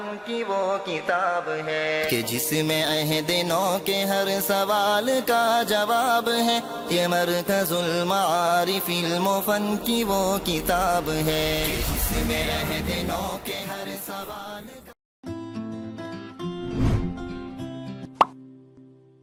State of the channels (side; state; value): both; identical; correlation 1.00